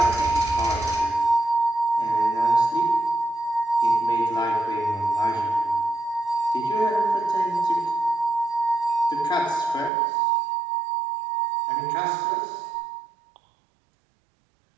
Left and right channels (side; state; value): left; drops out; at 9.9 s